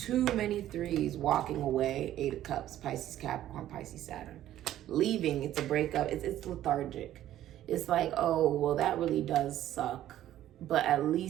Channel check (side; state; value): left; quieter; 12.7 dB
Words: many threes. Walking away. Eight of Cups. Pisces, Capricorn, Pisces, Saturn. Leaving. It's a breakup. It's lethargic. It's like, oh, well, that really does suck. But at